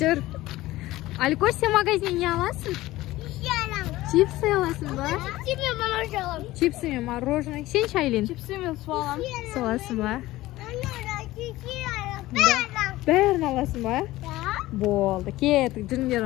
Alikosh, sen magazinga olasizmi? Chipsi olasizmi? Chipsimi, мороженое. Sen Shaylin. Chipsimi so'lam. Solasizmi? Bärini olasizmi? Bo'ldi, ketdik, jinglar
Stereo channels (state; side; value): quieter; right; 17.3 dB